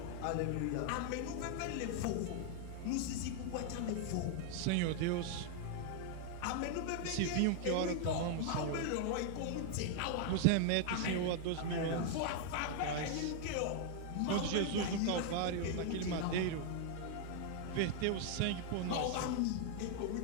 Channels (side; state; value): both; different; correlation 0.00